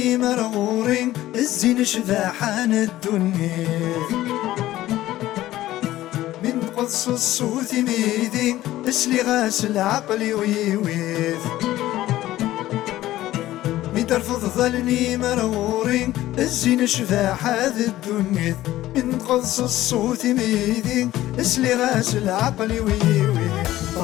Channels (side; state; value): right; quieter; 15.1 dB